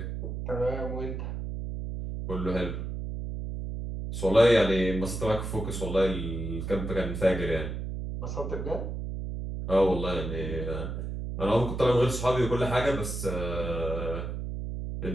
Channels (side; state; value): right; noise; hum, 5 dB below the sound